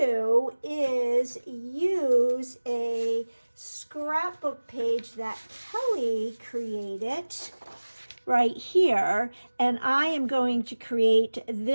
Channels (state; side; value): inverted; both; correlation -1.00